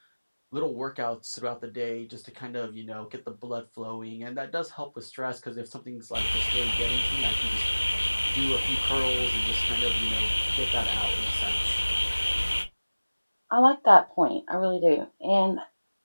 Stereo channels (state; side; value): inverted; both; correlation -1.00